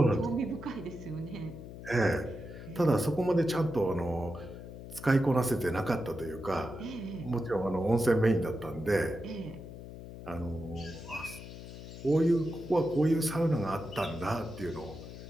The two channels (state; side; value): noise; left; hum, 12 dB below the sound